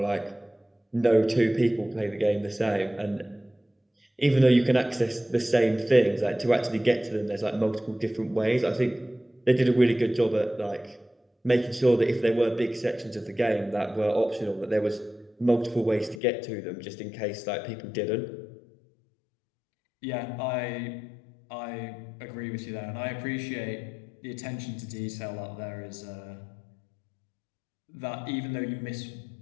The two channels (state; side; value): drops out; right; at 16.2 s